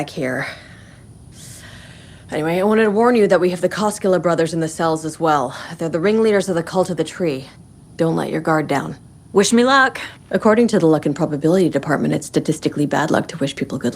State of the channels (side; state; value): both; identical; correlation 1.00